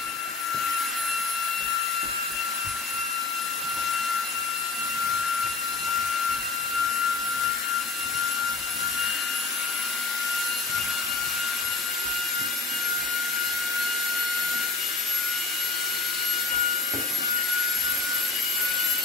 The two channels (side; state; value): right; quieter; 4.1 dB